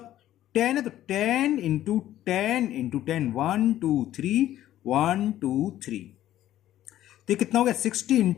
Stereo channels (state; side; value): quieter; right; 13.0 dB